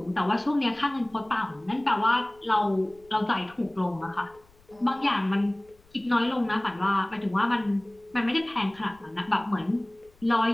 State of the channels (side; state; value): left; noise; rumble, 29 dB below the sound